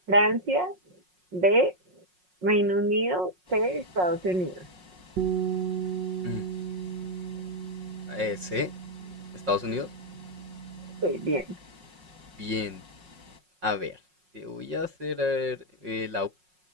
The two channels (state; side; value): late; left; 5.5 ms